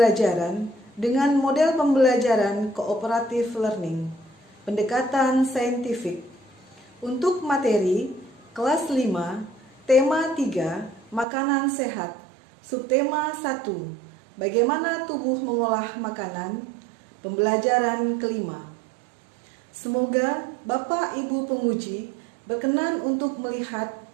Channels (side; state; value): left; drops out; at 11.2 s